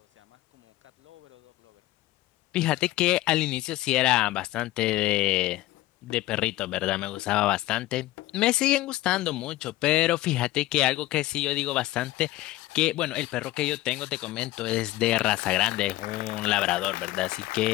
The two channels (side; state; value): right; quieter; 16.9 dB